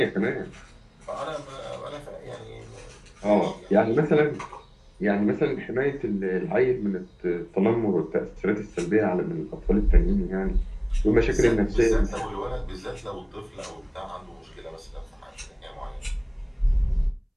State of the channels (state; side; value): identical; both; correlation 1.00